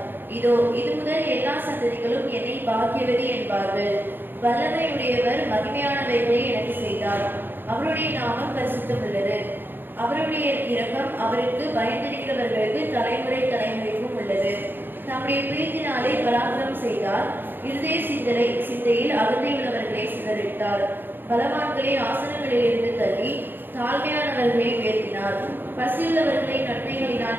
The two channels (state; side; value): late; left; 0.095 ms